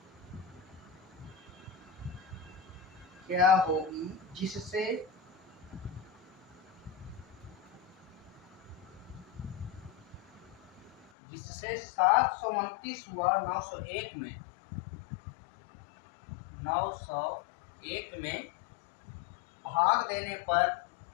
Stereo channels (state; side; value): drops out; right; at 11.1 s